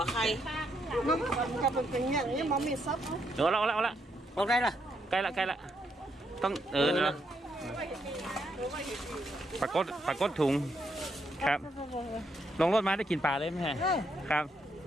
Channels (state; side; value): normal; both; correlation 0.77